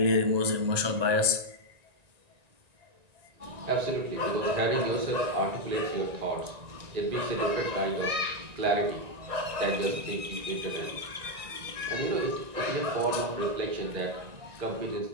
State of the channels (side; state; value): left; late; 1.9 ms